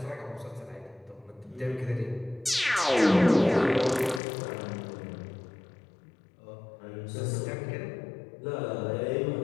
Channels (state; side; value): drops out; right; at 4.2 s